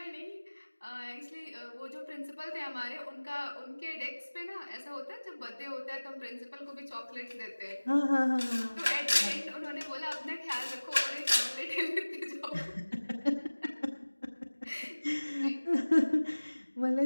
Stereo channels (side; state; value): both; inverted; correlation -1.00